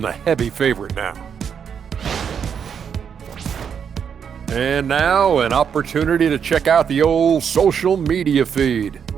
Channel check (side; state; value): left; quieter; 7.5 dB